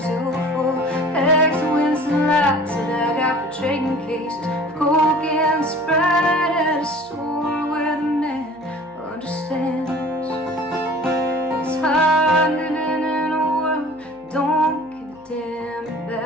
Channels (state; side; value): noise; right; hum, 29 dB below the sound